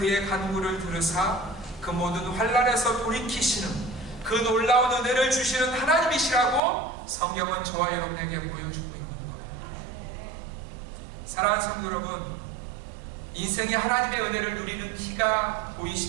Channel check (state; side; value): drops out; left; at 6.6 s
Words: 간구를 들으사 그 모든 환난에서 돌이키시는 그 놀라운 은혜를 주시는 하나님이시라고 성경은 저와 여러분에게 보여주고 있는 거예요. 사랑하는 성도 여러분, 인생에 하나님의 은혜를 누리는 키가